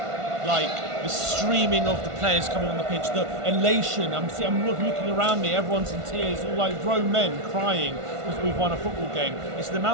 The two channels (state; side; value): late; left; 1.5 ms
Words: like the streaming of the players coming on the pitch, the elation. I'm looking around me, everyone's in tears, all like grown men crying because we've won a football game. It's the